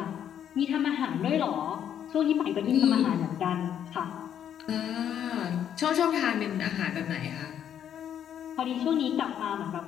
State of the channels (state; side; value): quieter; right; 9.5 dB